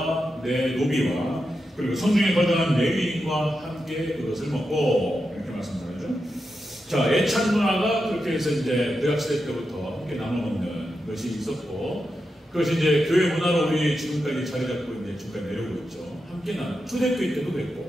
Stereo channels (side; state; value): both; normal; correlation 0.88